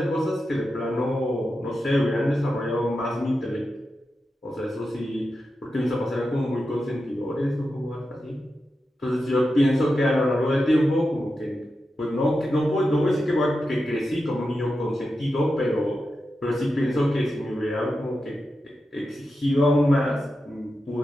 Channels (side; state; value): both; normal; correlation 0.89